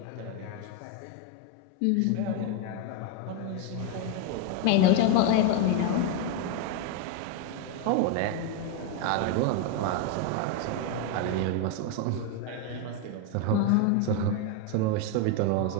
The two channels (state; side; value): different; both; correlation 0.02